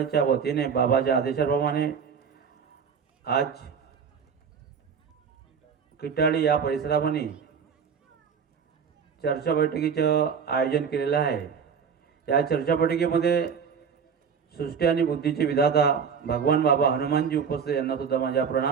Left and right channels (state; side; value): quieter; left; 6.6 dB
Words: वतीने बाबाच्या आदेशाप्रमाणे आज किटाळी या परिसरामध्ये चर्चा बैठकीचं आयोजन केलेलं आहे. या चर्चा बैठकीमध्ये सृष्टी आणि बुद्धीचे विधाता भगवान बाबा हनुमानजी उपस्थित यांना सुद्धा माझा